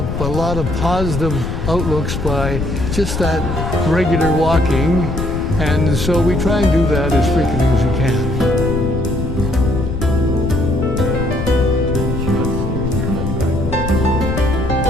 a lot of positive outlooks by just that regular walking. And so we try and do that as frequently as we can.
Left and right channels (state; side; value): noise; left; rumble, 4 dB below the sound